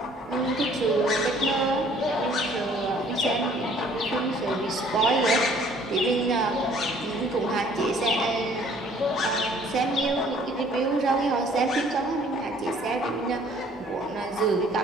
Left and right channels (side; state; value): both; normal; correlation 0.57